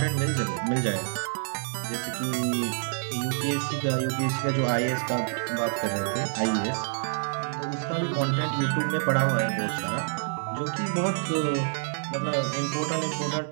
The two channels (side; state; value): left; silent; 60 dB below the other